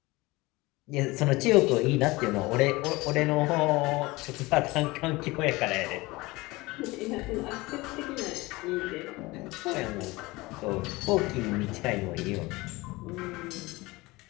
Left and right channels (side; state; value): right; quieter; 21.7 dB